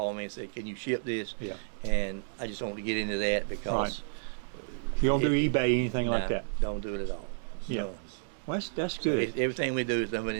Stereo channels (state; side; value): silent; left; digital silence